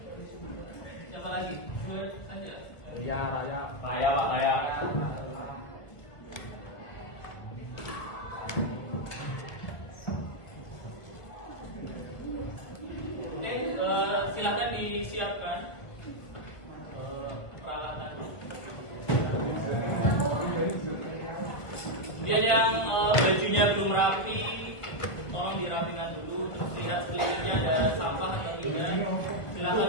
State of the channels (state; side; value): late; right; 1.3 ms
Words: siapa lagi? Dua saja. Raya. Saya Pak, saya. Oke, silakan disiapkan peralatannya. Kemudian yang bajunya belum rapi, tolong dirapikan dulu. Terus lihat sekelilingnya ada sampah atau tidak. Silakan